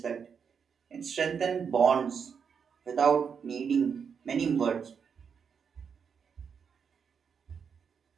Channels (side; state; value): left; quieter; 6.6 dB